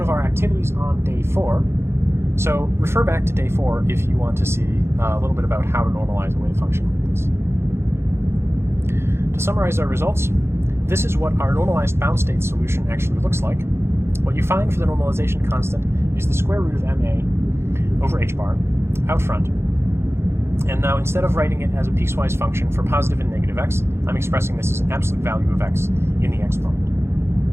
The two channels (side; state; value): left; late; 0.12 ms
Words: of our activities on day 4, so refer back to day 4 if you want to see a little bit about how to normalize a wave function like this. To summarize our results, this is what our normalized bound state solution actually looks like. What you find for the normalization constant is the square root of ma over h bar out front. And now instead of writing it as a piecewise function for positive and negative x, I'm expressing this as an absolute value of x in the exponent.